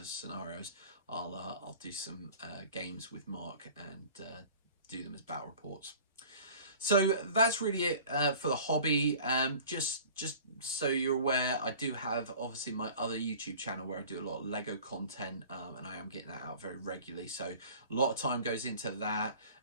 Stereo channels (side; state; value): both; inverted; correlation -0.45